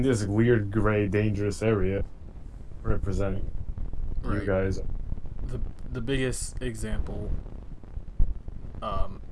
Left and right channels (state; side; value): identical; both; correlation 1.00